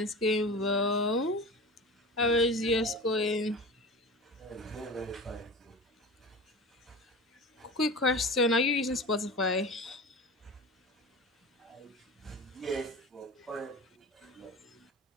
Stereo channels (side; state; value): both; normal; correlation 0.32